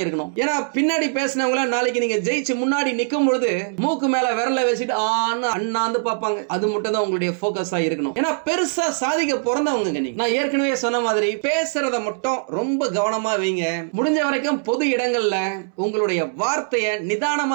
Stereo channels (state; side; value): silent; left; 64 dB below the other